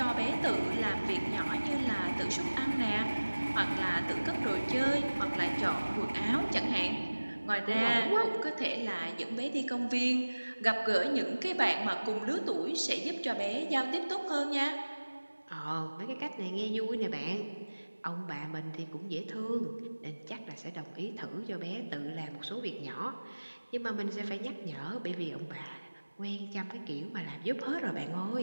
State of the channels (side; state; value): both; inverted; correlation -1.00